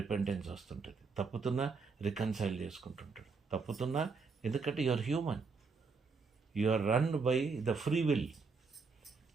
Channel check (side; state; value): left; quieter; 4.7 dB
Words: వస్తుంటుంది, తప్పుతున్నా రికన్సైల్ చేసుకుంటుంటాడు, తప్పుతున్నా, ఎందుకంటే you are human, you are run by the free will.